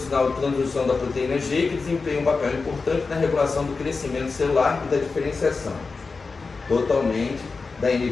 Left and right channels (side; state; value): right; quieter; 4.3 dB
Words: de transdução da proteína G, que desempenha um papel importante na regulação do crescimento celular e da diferenciação, totalmente da